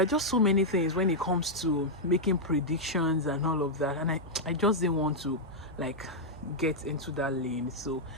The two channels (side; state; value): both; normal; correlation -0.04